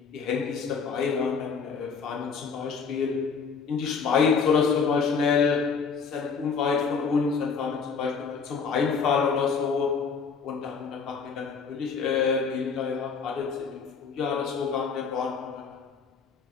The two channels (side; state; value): right; quieter; 5.6 dB